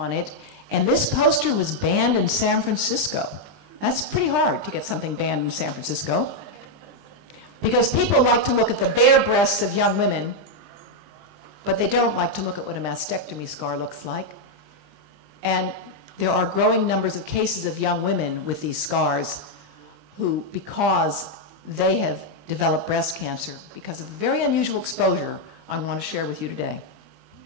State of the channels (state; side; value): late; left; 20 ms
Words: it, and this poster was banned in San Francisco. That's pretty hard to get something banned in San Francisco, because people like to look at the bare breasts of young women, but they don't like to look at what a mastectomy scar looks like. And there are growing numbers of cases of young women with these scars who, because they have developed breast cancer because of a very unusual exposure I want to share with you today.